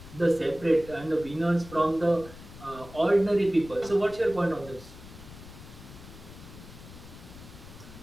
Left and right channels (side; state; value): left; noise; rumble, 16 dB below the sound